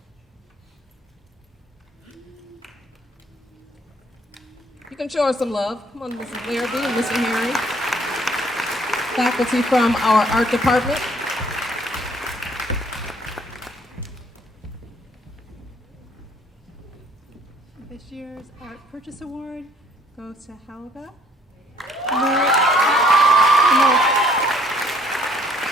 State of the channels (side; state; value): both; normal; correlation 0.61